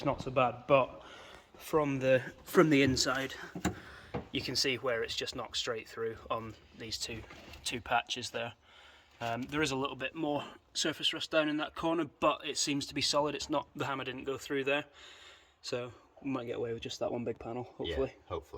not so bad, but from the inside, you can see where it's just knocked straight through on these two patches there. There is a little bit more surface rust down in that corner, but it seems to be solid. It's not, the hammer didn't go through there, so we might get away with just that one big panel, hopefully. Yeah,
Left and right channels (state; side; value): identical; both; correlation 1.00